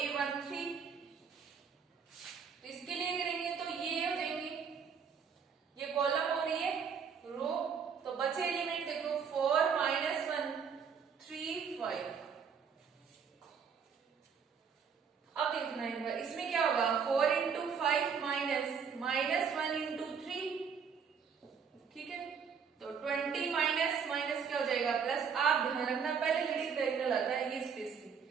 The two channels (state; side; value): quieter; left; 6.6 dB